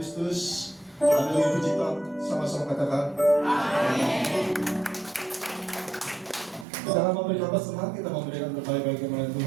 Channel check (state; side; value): drops out; left; at 6.7 s